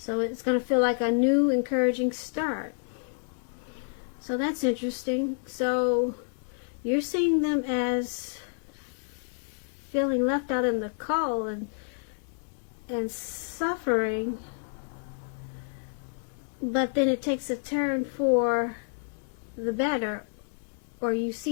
it's going to feel like a new, encouraging start. So that's interesting. So you're seeing them as feeling left out in the cold and suffering, but then it takes a turn for the better, or you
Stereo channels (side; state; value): right; silent; digital silence